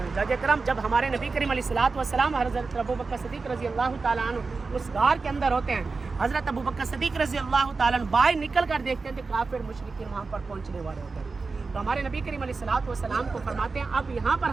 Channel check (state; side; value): quieter; left; 4.2 dB